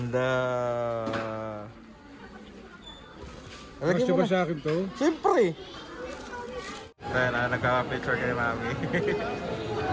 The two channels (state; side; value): identical; both; correlation 1.00